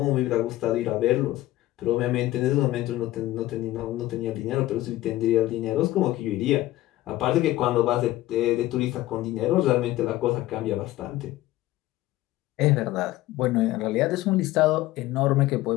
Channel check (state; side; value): quieter; right; 16.2 dB